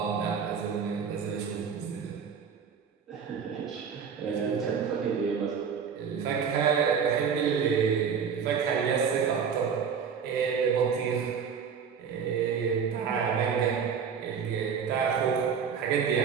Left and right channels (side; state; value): left; quieter; 6.8 dB